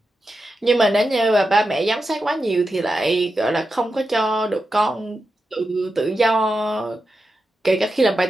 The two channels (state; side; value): normal; both; correlation 0.89